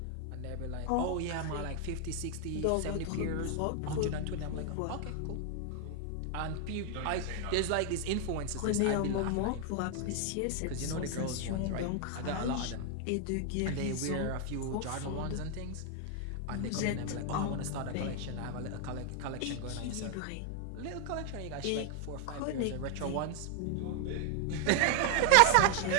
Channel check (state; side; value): different; both; correlation 0.00